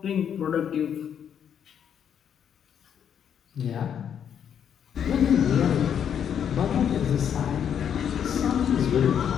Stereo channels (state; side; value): quieter; right; 8.6 dB